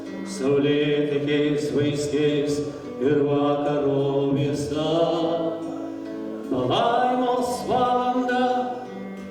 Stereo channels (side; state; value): both; identical; correlation 1.00